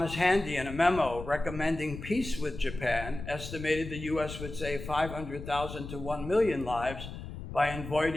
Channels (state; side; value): noise; left; rumble, 10 dB below the sound